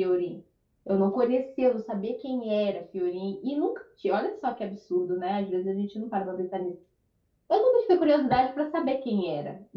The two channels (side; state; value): both; identical; correlation 1.00